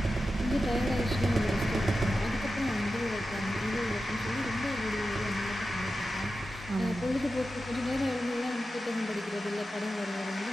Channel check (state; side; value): normal; both; correlation 0.92